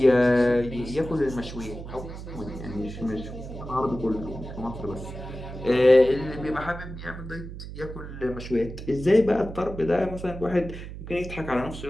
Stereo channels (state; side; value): noise; right; hum, 10 dB below the sound